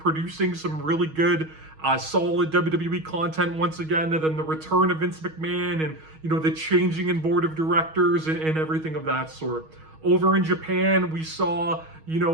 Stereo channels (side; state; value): left; late; 6.3 ms